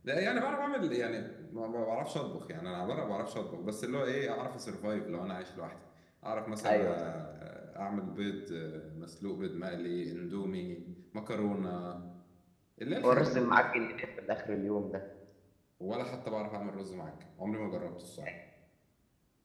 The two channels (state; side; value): identical; both; correlation 1.00